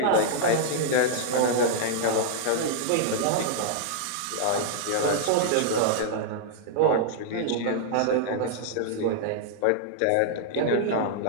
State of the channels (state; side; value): different; both; correlation -0.01